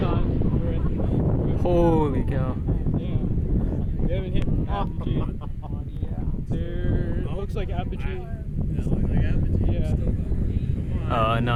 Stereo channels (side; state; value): both; identical; correlation 1.00